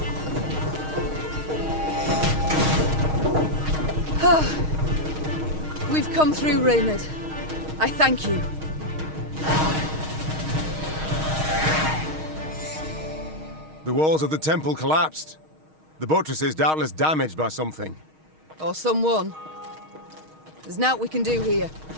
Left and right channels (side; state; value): left; late; 6.4 ms